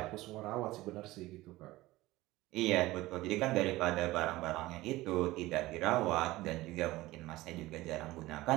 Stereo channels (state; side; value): quieter; left; 18.3 dB